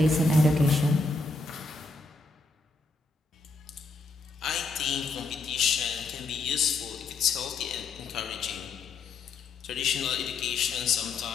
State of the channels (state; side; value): quieter; right; 3.7 dB